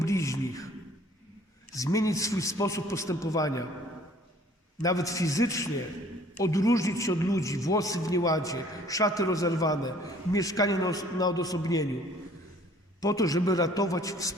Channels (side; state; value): both; normal; correlation 0.55